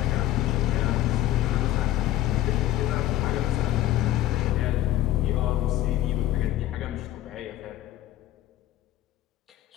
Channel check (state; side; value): quieter; right; 14.2 dB